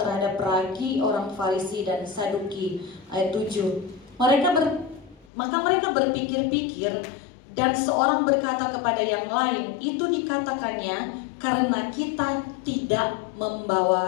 ragi orang Farisi dan Saduki. Ayat 7. Maka mereka berpikir-pikir, dan seorang berkata kepada yang lain, itu dikatakannya karena kita tidak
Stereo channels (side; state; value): right; drops out; at 5.2 s